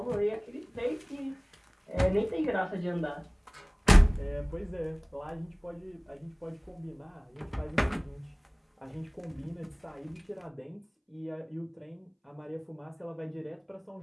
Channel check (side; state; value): both; identical; correlation 1.00